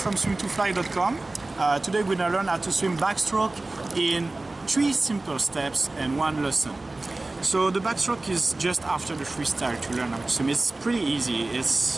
swim2fly.com. Today we're going to learn how to swim backstroke in 3 simple steps and 1 lesson. So the backstroke is just after the freestyle to learn how to swim. It's pretty easy.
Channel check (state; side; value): quieter; left; 3.0 dB